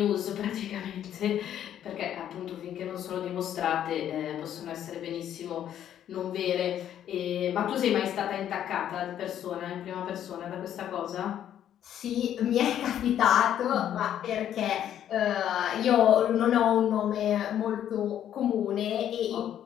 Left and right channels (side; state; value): right; quieter; 10.5 dB